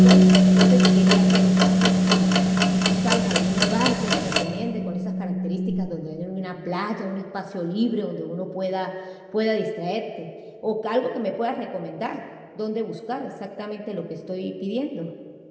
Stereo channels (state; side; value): identical; both; correlation 1.00